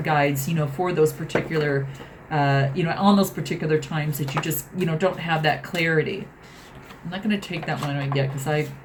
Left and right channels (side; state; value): both; identical; correlation 1.00